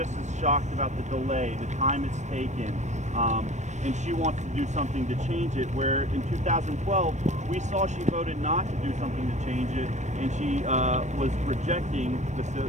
as shocked about the delay, the time it's taken, and she wants to do something to change it, where in 2012 we saw she voted not to do something to change it, and she was rejecting the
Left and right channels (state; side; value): late; left; 0.34 ms